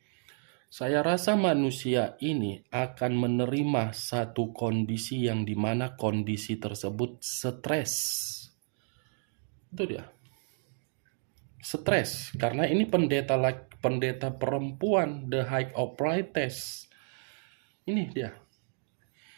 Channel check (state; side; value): silent; left; 55 dB below the other